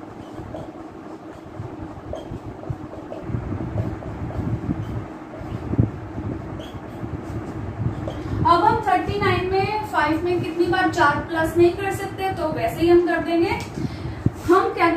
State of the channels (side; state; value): both; identical; correlation 1.00